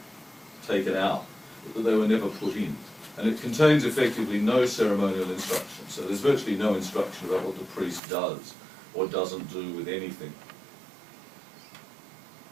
taken out, but that they were never put in. And it contains effectively no ceremonial instruction. So there's virtually no instruction about what the priest does or doesn't do with anything.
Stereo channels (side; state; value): left; drops out; at 8.0 s